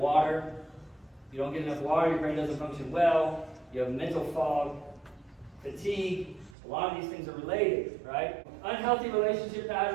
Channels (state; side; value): drops out; left; at 6.6 s